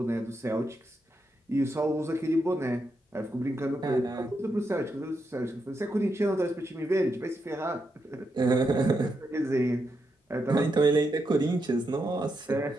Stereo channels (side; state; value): both; normal; correlation 0.83